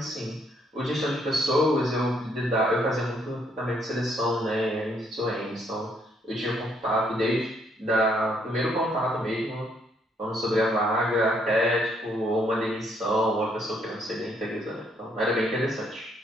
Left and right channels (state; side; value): normal; both; correlation 0.70